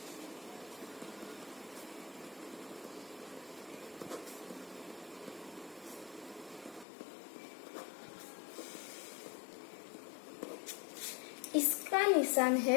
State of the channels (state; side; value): drops out; right; at 6.9 s